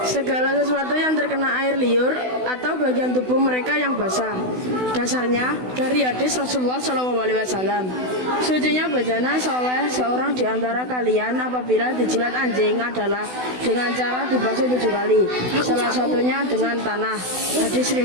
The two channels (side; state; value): left; late; 16 ms